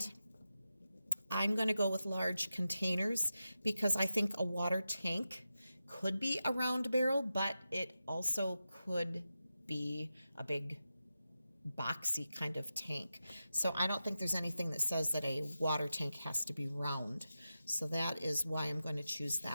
I'm going to go with large containers because I think a water tank could be a round barrel, but it also could be a big boxy kind of tank. So I don't think there's anything that says that a water tank has to be round. So that is why I'm going to choose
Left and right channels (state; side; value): inverted; both; correlation -0.91